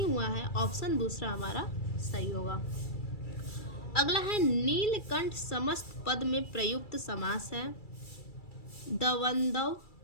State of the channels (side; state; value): right; late; 2.3 ms